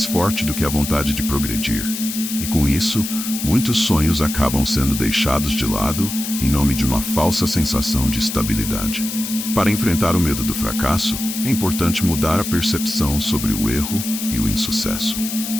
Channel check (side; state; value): left; noise; hiss, 6 dB below the sound